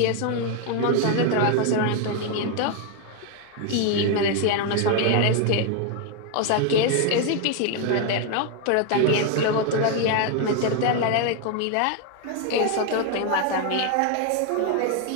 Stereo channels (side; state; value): both; different; correlation 0.01